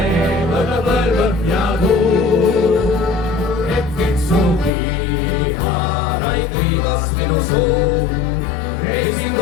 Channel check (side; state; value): right; drops out; at 4.7 s